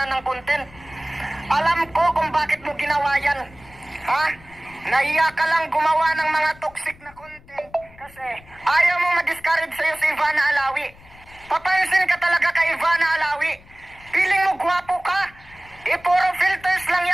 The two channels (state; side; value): noise; left; rumble, 24 dB below the sound